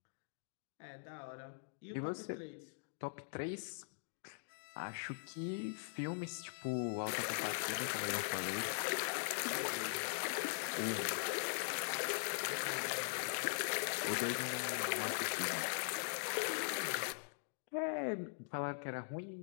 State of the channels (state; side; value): silent; right; digital silence